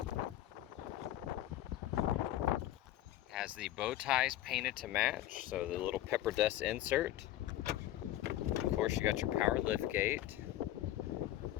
Has the bow ties painted to match, so the little PEPPERDUST insert. Of course, you got your power lift gate.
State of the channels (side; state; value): right; quieter; 13.8 dB